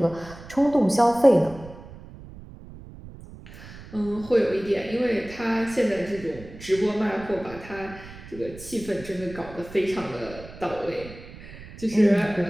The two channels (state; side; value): noise; right; rumble, 16 dB below the sound